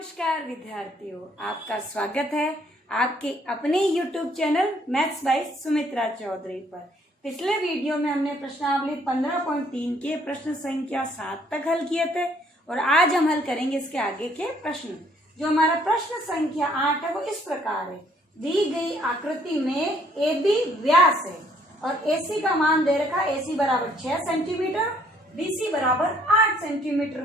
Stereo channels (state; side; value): normal; both; correlation 0.64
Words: विद्यार्थियों, आपका स्वागत है आपके अपने YouTube channel maths by Sumitra Chaudhary पर। पिछले वीडियो में हमने प्रश्नावली 15.3 के प्रश्न संख्या 7 तक हल किए थे और आज हम हल करेंगे इसके आगे के प्रश्न। जो हमारा प्रश्न संख्या 8 है वो इस प्रकार है। दी गई आकृति में AB व्यास है और AC का मान दे रखा है। AC बराबर 6 सेंटीमीटर, BC बराबर 8